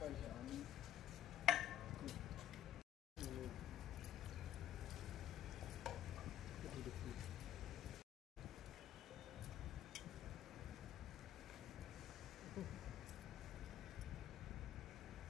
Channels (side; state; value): right; quieter; 11.6 dB